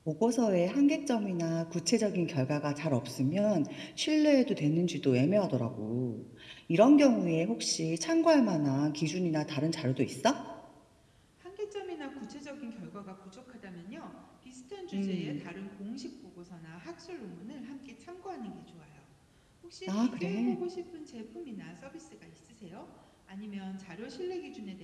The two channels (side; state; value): both; identical; correlation 1.00